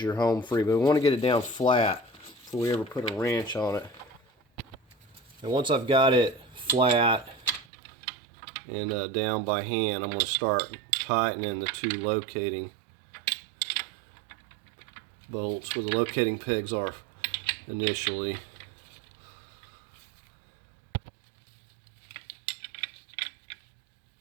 you're home free. But we want to get it down flat before we ever put a wrench on it. And once I've got it flat and down by hand, I'm going to start tightening the two locating bolts where the locating pegs are initially.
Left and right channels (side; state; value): left; drops out; at 7.7 s